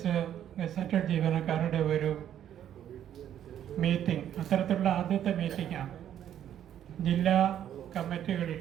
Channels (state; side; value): quieter; left; 10.5 dB